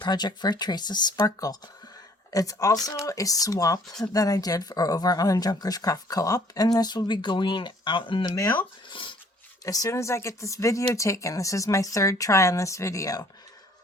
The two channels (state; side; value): normal; both; correlation 0.58